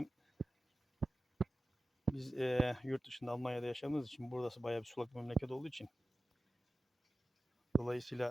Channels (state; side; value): normal; both; correlation 0.95